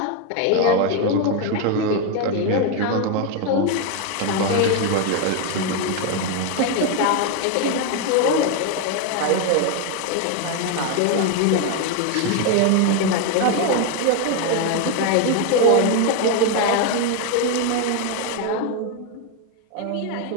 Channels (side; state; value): both; different; correlation 0.01